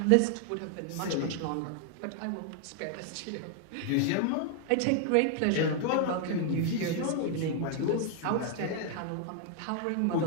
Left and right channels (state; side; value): different; both; correlation 0.00